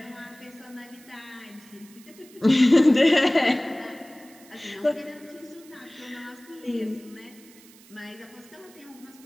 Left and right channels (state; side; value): noise; right; hiss, 24 dB below the sound